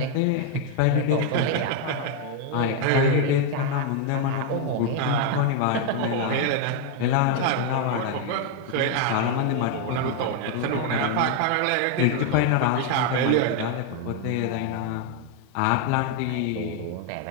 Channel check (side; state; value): both; different; correlation 0.00